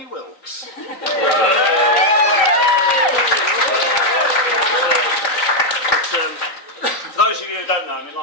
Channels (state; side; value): late; right; 3.9 ms